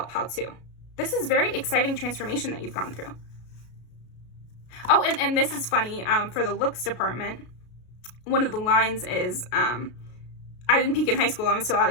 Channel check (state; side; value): late; right; 33 ms